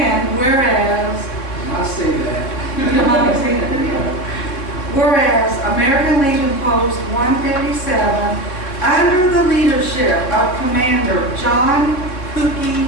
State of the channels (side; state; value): right; late; 3.7 ms